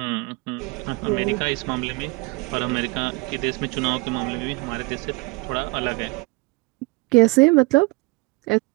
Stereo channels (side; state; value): left; quieter; 25.2 dB